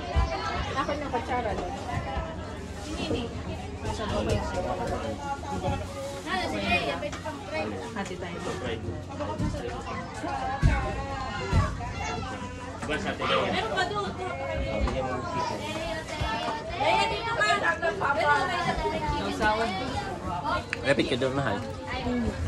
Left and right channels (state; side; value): identical; both; correlation 1.00